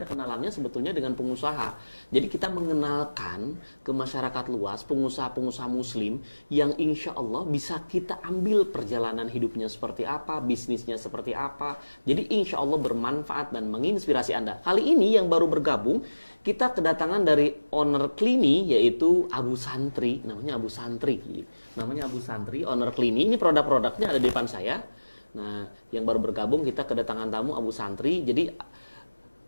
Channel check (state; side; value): inverted; both; correlation -1.00